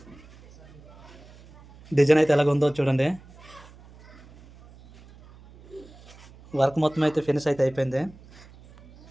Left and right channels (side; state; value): right; noise; hum, 23 dB below the sound